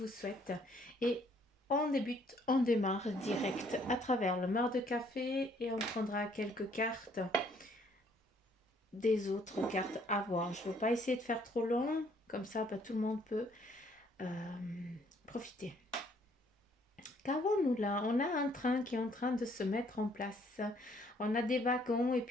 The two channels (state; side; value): normal; both; correlation 0.64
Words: souhaite. Et on démarre direct à travers le mar de café et on prendra quelques cartes des autres cartes à voir. Je ne veux pas essayer de faire trop long, comme ça tout le monde peut euh, profiter. Qu'avons-nous là? On a un train qui est en train de se mettre en place. On a des wagons et